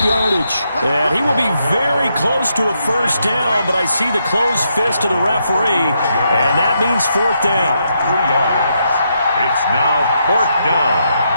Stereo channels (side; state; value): both; inverted; correlation -0.79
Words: yardage. And he will be very close to a 1st down, but I see the closed fist of the referee, and that means 4th down. 3 yards. It's now 4th down.